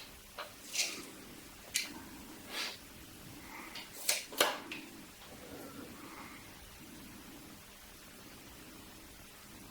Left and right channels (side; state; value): both; identical; correlation 1.00